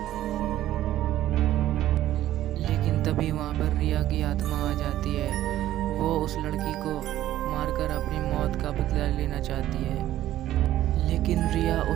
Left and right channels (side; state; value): left; quieter; 13.5 dB